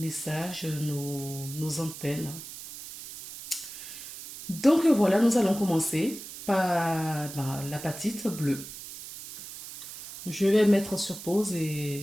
nos antennes. Donc voilà, nous allons commencer par l'apatite bleue. Je vais mettre sur pause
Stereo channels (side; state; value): right; noise; hiss, 12 dB below the sound